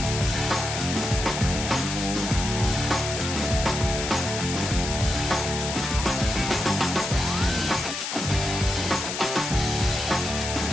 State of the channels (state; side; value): noise; left; hiss, 5 dB below the sound